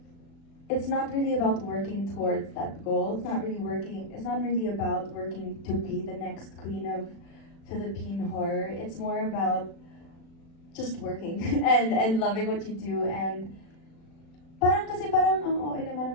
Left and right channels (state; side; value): late; right; 36 ms